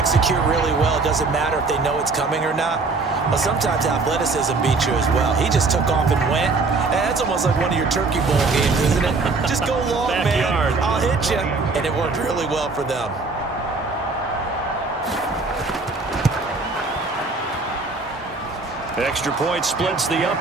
really well, it doesn't matter if they know it's coming or not. Well, sometimes athleticism beats you as well. He just took off and went. And that's almost like one of your Turkey Bowl games, isn't it? Just go long, Backyard. man. I'll hit you. And it worked really well for them. Extra point splits the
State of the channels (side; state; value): left; quieter; 3.9 dB